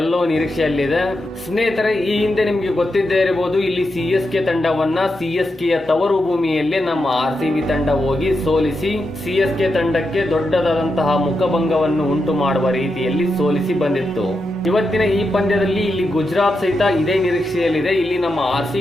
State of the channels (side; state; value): both; normal; correlation 0.86